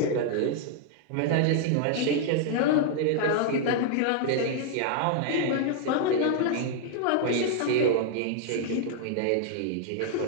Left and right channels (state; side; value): different; both; correlation -0.01